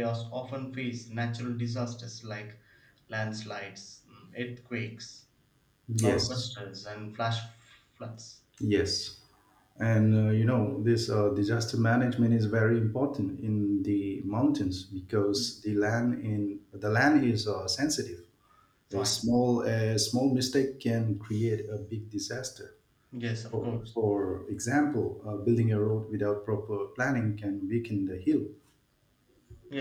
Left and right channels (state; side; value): identical; both; correlation 1.00